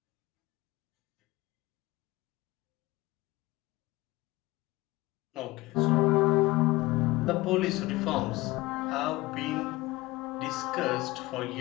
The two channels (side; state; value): right; quieter; 20.1 dB